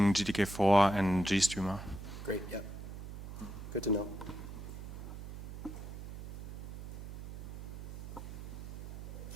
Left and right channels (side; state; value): right; noise; hum, 9 dB below the sound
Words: GTK4 and GStreamer. Great, yeah. Good to know.